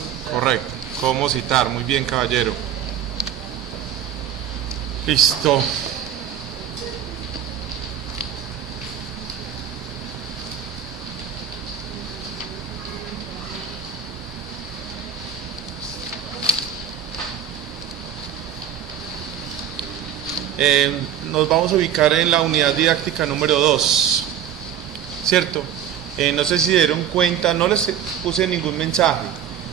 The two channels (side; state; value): left; quieter; 9.3 dB